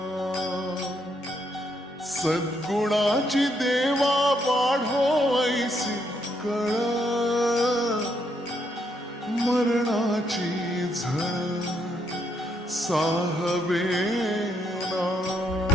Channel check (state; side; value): normal; both; correlation 0.76